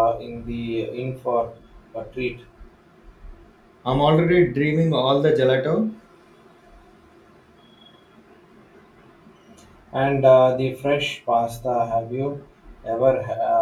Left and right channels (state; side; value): identical; both; correlation 1.00